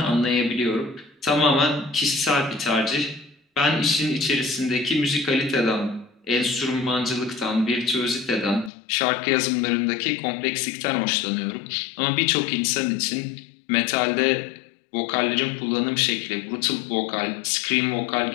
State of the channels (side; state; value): right; drops out; at 8.7 s